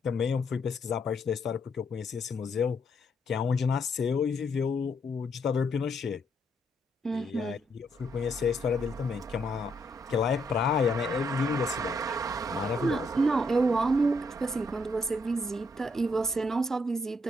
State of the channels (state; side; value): normal; both; correlation 0.74